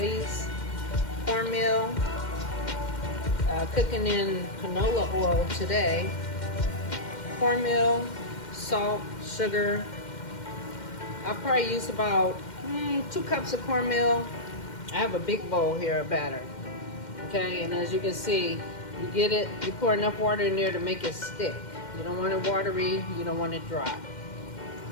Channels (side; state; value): right; late; 2.1 ms